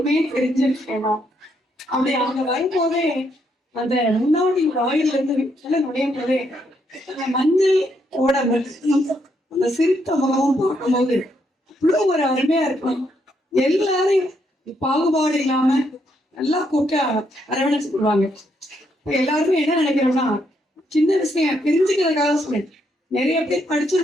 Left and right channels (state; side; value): normal; both; correlation 0.76